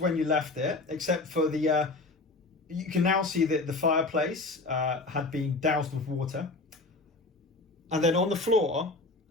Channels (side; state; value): right; quieter; 3.2 dB